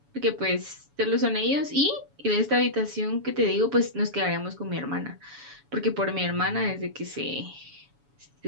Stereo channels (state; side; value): late; left; 7.1 ms